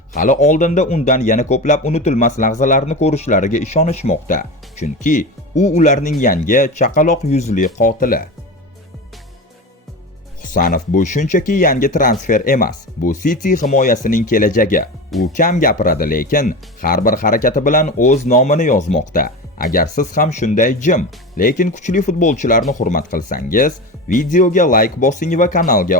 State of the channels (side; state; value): both; normal; correlation 0.26